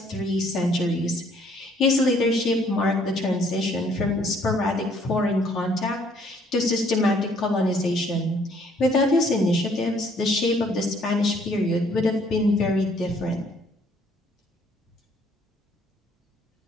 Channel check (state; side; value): normal; both; correlation 0.63